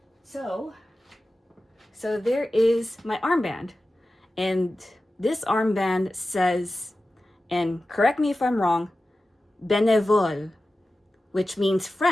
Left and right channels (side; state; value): both; normal; correlation 0.94